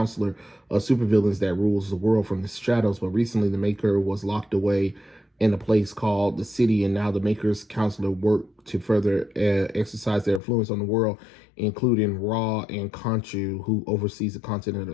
of supervillains that rules the world from the shadows. But recently, the Maker was locked away in a place called the city, and now the Maker's Counselor work to further exercise their influence on the world, including Ra and Khonshu, who oversees the continent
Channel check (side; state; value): right; drops out; at 10.4 s